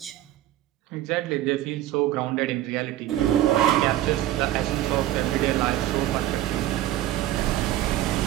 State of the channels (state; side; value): quieter; left; 13.7 dB